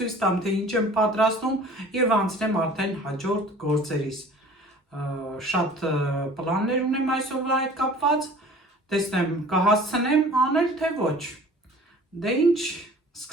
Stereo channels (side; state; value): both; normal; correlation 0.47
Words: տամ, թե ինչ եմ պատրաստում եւ անցնեմ արդեն հաջորդ գործերիս։ Շատ պլաններ ունեմ այսօրվա հետ կապված, տեսնեմ կհասցնեմ անել թե ոչ։ Դե ինչ,